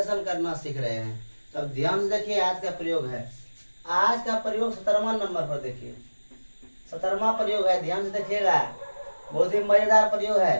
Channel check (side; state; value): both; inverted; correlation -1.00